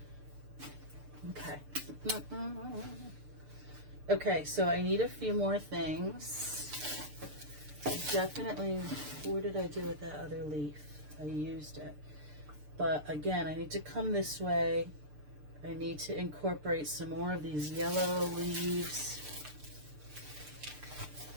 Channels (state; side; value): late; left; 6.7 ms